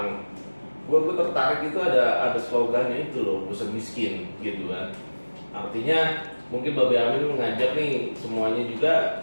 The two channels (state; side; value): inverted; both; correlation -1.00